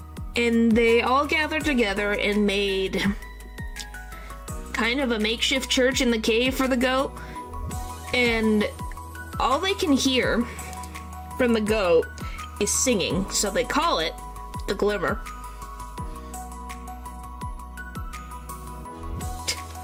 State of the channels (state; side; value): identical; both; correlation 1.00